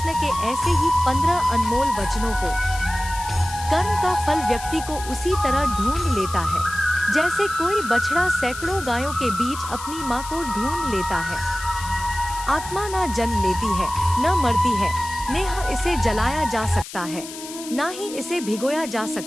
के ऐसे ही 15 अनमोल वचनों को। कर्म का फल व्यक्ति को उसी तरह ढूंढ लेता है जैसे कोई बछड़ा सैकड़ों गायों के बीच अपनी माँ को ढूंढ लेता है। आत्मा न जन्म लेती है, न मरती है, नेह इसे जलाया जा सकता है, ना ही इसे भिगोया जा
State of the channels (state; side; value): noise; left; hiss, 12 dB below the sound